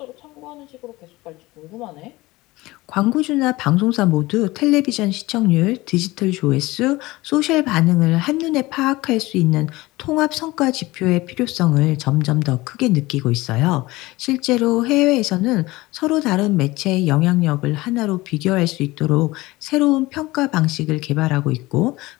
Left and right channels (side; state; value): right; quieter; 20.1 dB